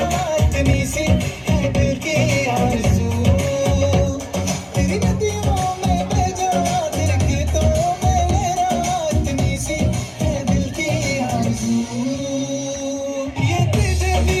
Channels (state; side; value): identical; both; correlation 1.00